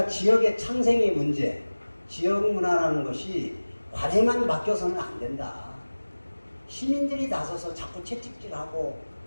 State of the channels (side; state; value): both; inverted; correlation -1.00